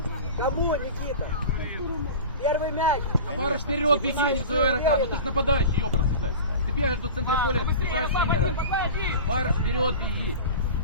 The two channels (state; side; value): inverted; both; correlation -0.33